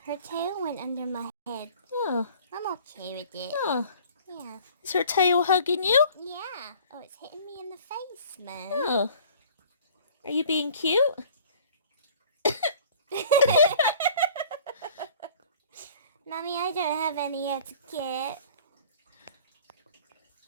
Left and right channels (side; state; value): both; inverted; correlation -0.49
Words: her tail went under my head. Oh, I'm okay with it. oh. Yeah. Is her tail hugging you? Yeah. Oh, it's hitting me in the face, Mum. Oh. Are you being cute? Mommy, I don't have any etiquette.